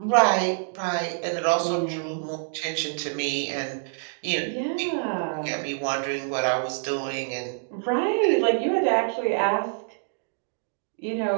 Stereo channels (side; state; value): left; silent; 61 dB below the other